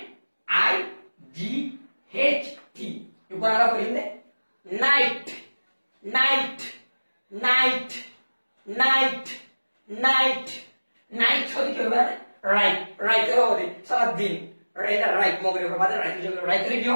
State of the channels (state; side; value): inverted; both; correlation -1.00